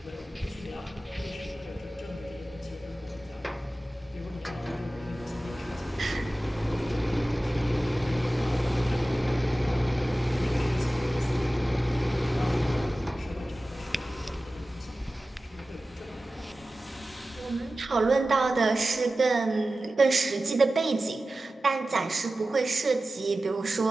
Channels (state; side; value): normal; both; correlation 0.95